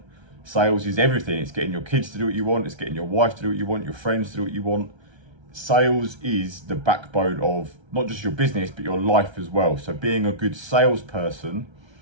Sales is everything. It's getting your kids to do what you want. It's getting your wife to do what you want, your friends to do what you want. Sales is the backbone of not just your business, but your life as well. So being a good salesperson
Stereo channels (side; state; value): left; late; 1.3 ms